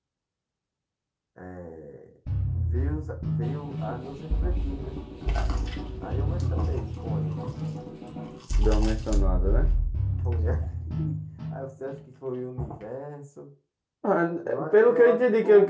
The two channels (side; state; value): both; identical; correlation 1.00